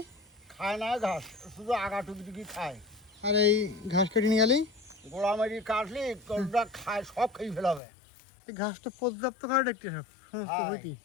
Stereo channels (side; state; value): right; drops out; at 7.8 s